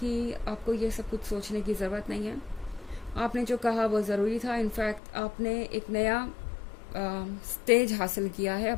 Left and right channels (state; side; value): drops out; right; at 5.0 s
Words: आपको ये सब कुछ सोचने की ज़रूरत नहीं है। आपने जो कहा वो ज़रूरी था। इनफैक्ट आपने एक नया स्टेज हासिल किया है